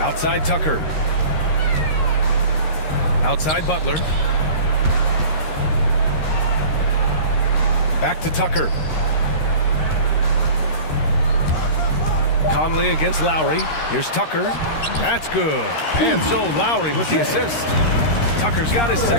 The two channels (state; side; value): late; right; 13 ms